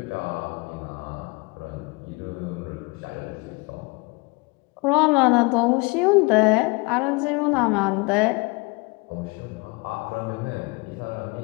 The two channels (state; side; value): quieter; right; 27.6 dB